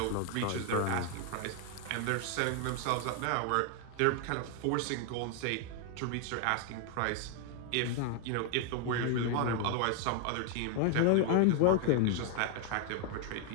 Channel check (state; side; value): different; both; correlation 0.00